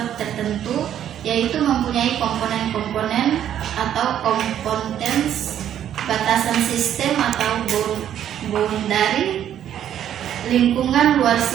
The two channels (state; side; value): quieter; left; 10.4 dB